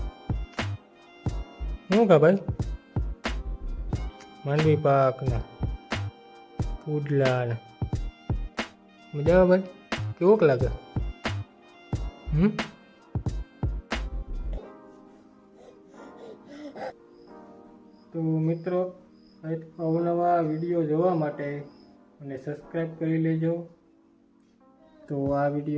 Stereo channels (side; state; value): both; identical; correlation 1.00